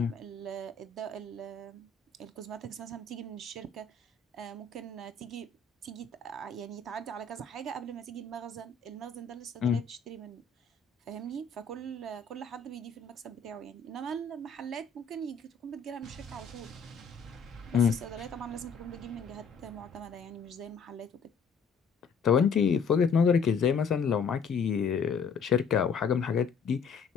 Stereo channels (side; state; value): right; quieter; 5.2 dB